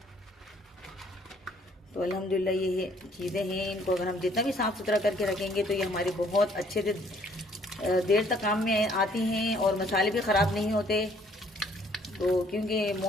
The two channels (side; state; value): both; normal; correlation 0.62